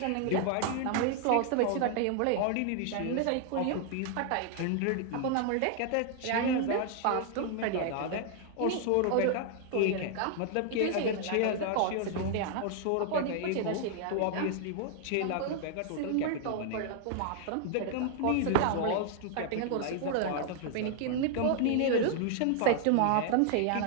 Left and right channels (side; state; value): both; different; correlation 0.00